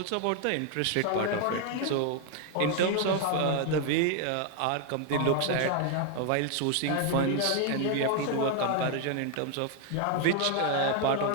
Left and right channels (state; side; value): different; both; correlation 0.00